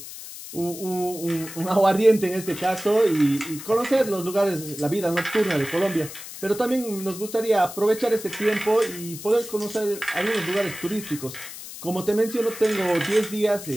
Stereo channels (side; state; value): left; noise; hiss, 12 dB below the sound